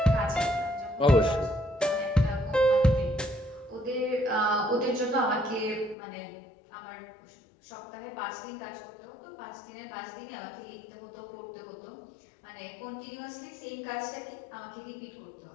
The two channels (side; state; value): right; drops out; at 6.0 s